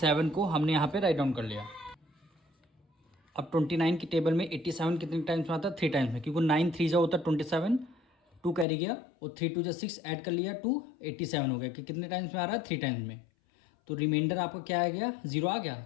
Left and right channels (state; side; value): drops out; right; at 8.7 s